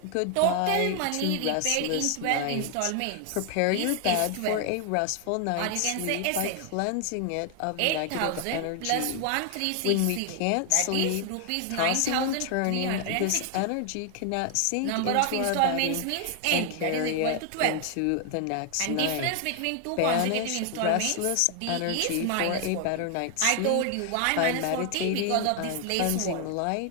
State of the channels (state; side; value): different; both; correlation 0.00